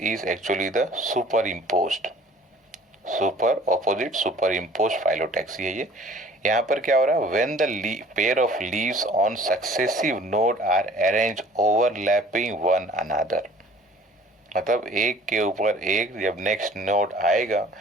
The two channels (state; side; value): normal; both; correlation 0.50